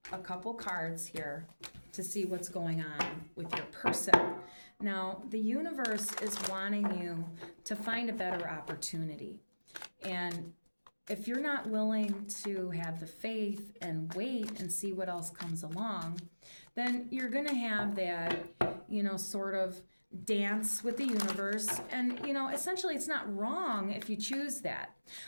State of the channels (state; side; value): inverted; both; correlation -1.00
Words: a couple cards here to see what's going on with your person. Now, the universe is wanting you to find a better opportunity. And if you're not willing to have the faith and wait and see what else comes along, then you're going to have that, sort of dance with the universe. And, essentially it's not wrong if you choose that,